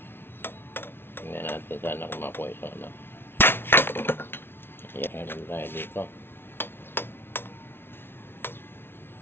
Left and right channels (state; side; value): late; right; 0.11 ms